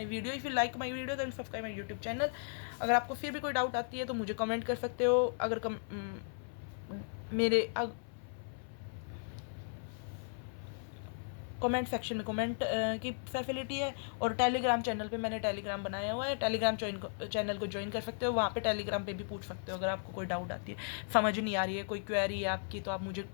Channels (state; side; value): silent; right; 54 dB below the other